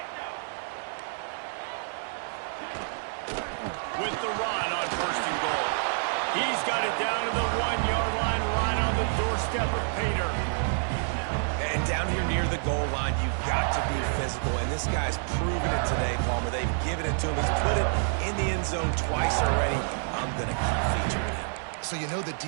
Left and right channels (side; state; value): left; silent; digital silence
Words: With the run on first and goal. He's got it down to the 1-yard line, right on the doorstep of pay dirt. And down here near the goal line, you've got to be physical. And this guy's proven it today, Palmer. They've given it to him. He's put it in the end zone twice already. I'm going to keep featuring him. So you know the